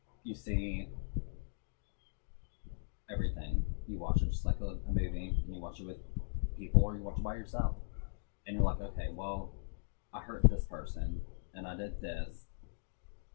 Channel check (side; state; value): right; silent; digital silence